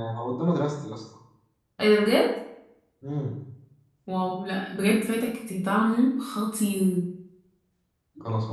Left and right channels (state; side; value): identical; both; correlation 1.00